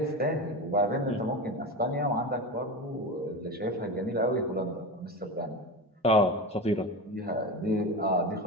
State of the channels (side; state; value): both; normal; correlation 0.23